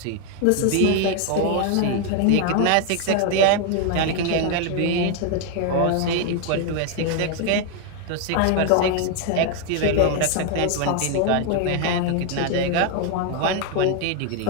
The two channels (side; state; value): both; different; correlation 0.01